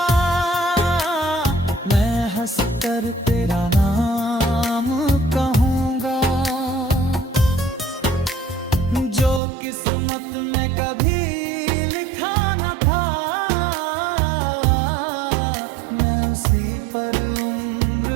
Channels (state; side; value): drops out; left; at 9.4 s